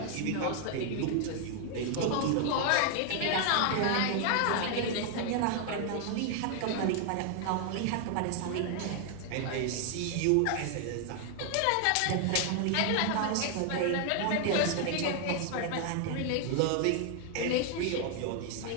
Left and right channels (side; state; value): both; different; correlation 0.00